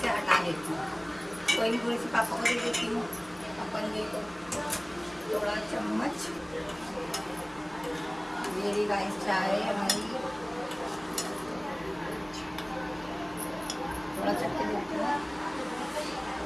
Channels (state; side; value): noise; right; hum, 24 dB below the sound